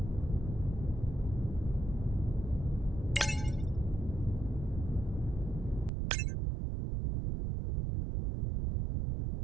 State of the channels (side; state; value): left; drops out; at 5.9 s